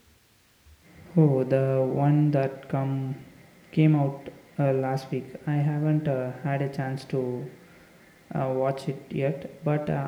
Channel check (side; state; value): both; identical; correlation 1.00